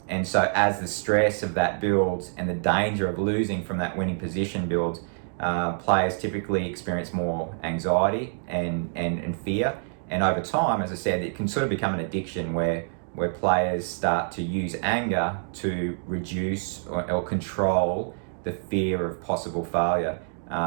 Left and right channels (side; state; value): left; silent; digital silence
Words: so as the stress of that builds and the danger of losing from that winning position builds, players typically experience more anxiety and fear. And over time, as I said, it can sort of become an addiction where players start to use anger to reduce or control the fear of possible failure.